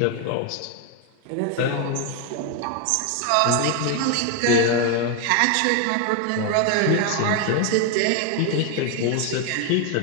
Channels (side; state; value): both; different; correlation 0.01